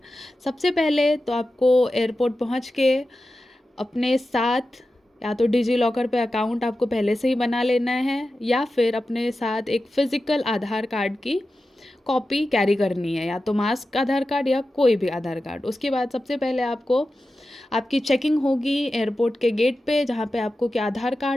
सबसे पहले तो आपको एयरपोर्ट पहुंच के अपने साथ या तो डिजी लॉकर पे अकाउंट आपको पहले से ही बना लेना है, या फिर अपने साथ एक फ़िज़िकल आधार कार्ड की कॉपी कैरी करनी है, या तो मास्क आधार कार्ड या कोई भी आधार कार्ड। उसके बाद सबसे पहले आपको आपकी चेकिंग होगी एयरपोर्ट के गेट पे, जहाँ पे आपको क्या आधार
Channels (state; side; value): normal; both; correlation 0.93